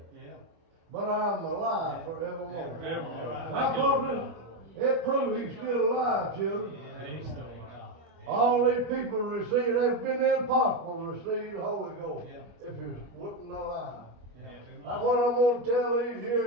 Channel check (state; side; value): late; left; 25 ms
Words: but I'm alive forevermore. I thought it proved he's still alive, children. All these people receive, they've been impossible to receive the Holy Ghost if he wasn't alive. That's what I'm going to tell these